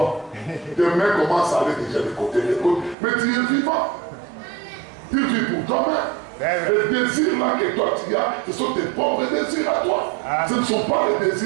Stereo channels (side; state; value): left; drops out; at 3.0 s